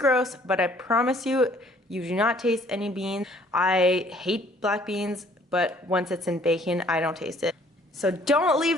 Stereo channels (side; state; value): both; normal; correlation 0.59